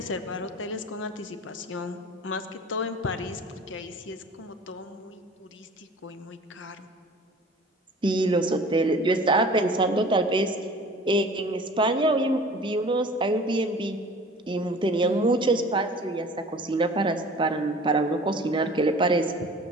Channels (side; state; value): both; normal; correlation 0.45